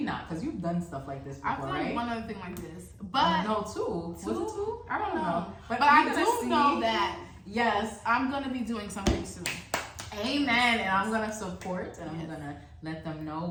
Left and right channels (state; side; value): identical; both; correlation 1.00